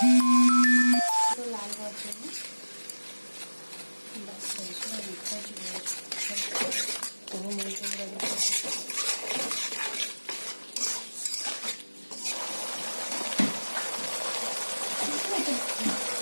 লাল হওয়ার জন্য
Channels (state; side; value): inverted; both; correlation -1.00